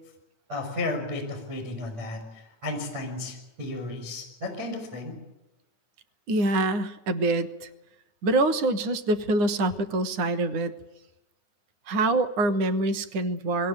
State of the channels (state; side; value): late; left; 9.7 ms